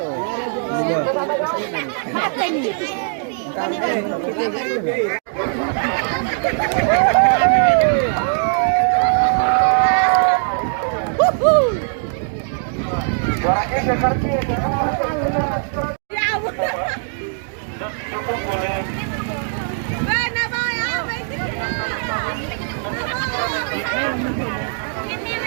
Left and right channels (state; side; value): silent; left; 66 dB below the other